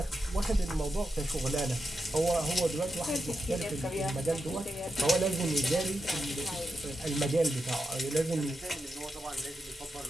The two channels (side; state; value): both; normal; correlation 0.87